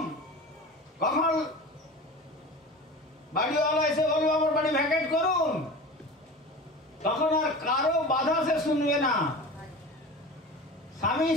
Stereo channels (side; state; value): both; normal; correlation 0.34